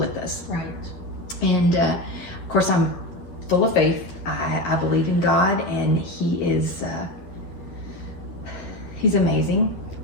us. Right. And of course, I'm full of faith. I believe in God, and He is, He's amazing,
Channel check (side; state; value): right; late; 11 ms